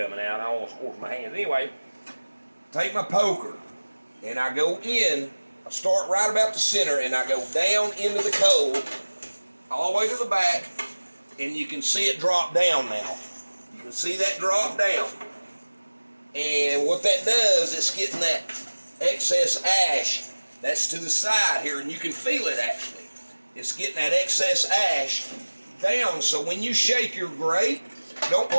out. I almost scorched my hands. Anyway, take my poker and I go in. I start right about the center and I go down into the coal all the way to the back, and you can see it drop down now. You can see that drop down. And what that does, it's getting that excess ash that's to the side here, and you can feel it actually. It's getting that excess ash down, so when you shake your grate, don't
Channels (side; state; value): both; inverted; correlation -1.00